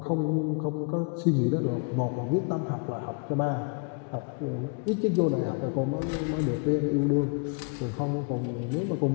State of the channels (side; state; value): right; quieter; 35.1 dB